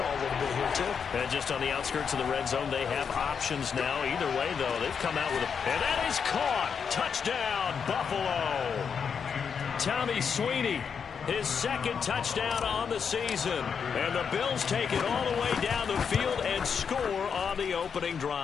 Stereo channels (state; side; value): quieter; right; 6.6 dB